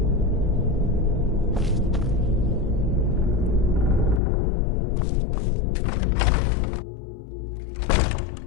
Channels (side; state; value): right; drops out; at 4.2 s